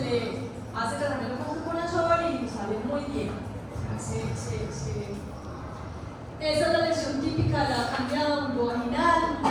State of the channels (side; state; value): both; identical; correlation 1.00